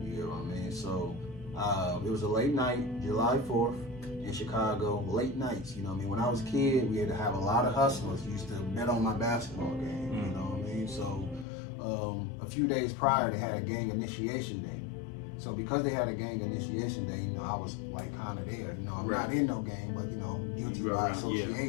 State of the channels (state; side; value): drops out; right; at 11.5 s